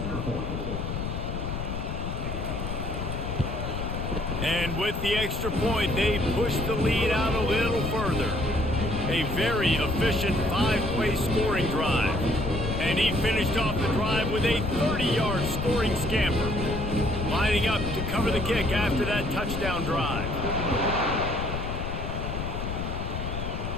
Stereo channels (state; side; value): noise; left; rumble, 4 dB below the sound